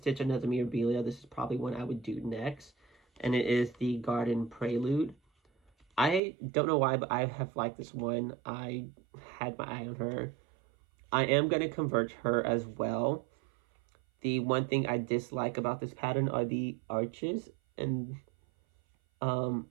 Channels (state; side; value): drops out; left; at 6.2 s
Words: another Mirabilia, this is probably one I would do next. And it is the Garden Prelude. I don't know why, but I have liked this one. I had my eye on her. I am going to convert her as well. The one thing I dislike about this pattern are the arches. And